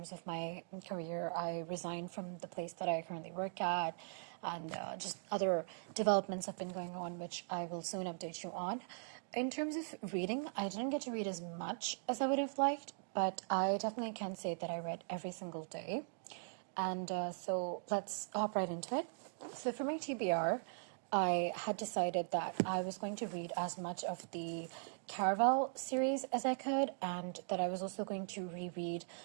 of my career. I resigned from the place that I currently work at, and just other developments have been going on, which I will soon update you on. In terms of reading, I didn't get to read as much as I would have liked, but I definitely can say that I read every single day. And so let's hop right into it. So for my TBR, I had decided that I was going to read as much of the Caraval series as I could, and that I was also going to reread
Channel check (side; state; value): left; silent; digital silence